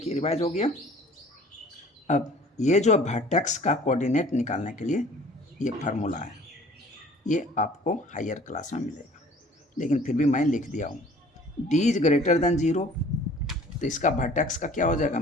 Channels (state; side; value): normal; both; correlation 0.51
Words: रिवाइज हो गया। अब ये जो वर्टेक्स का कोऑर्डिनेट निकालने के लिए ये फार्मूला है, ये आपको हायर क्लास में मिलेगा, लेकिन फिर भी मैं लिख दिया हूँ। d इज ग्रेटर देन 0, तो इसका वर्टेक्स का क्या हो जाएगा,